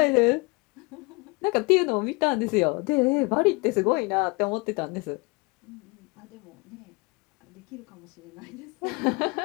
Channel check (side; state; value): right; quieter; 27.9 dB